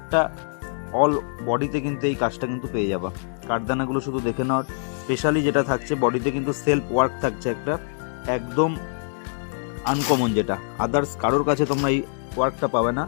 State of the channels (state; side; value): silent; right; 62 dB below the other